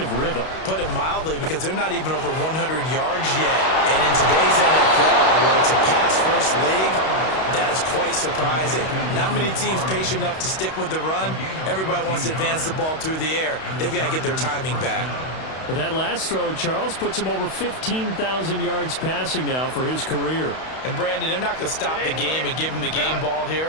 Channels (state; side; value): late; right; 32 ms